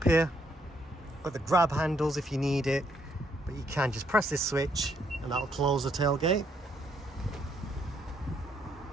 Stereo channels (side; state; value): both; normal; correlation 0.72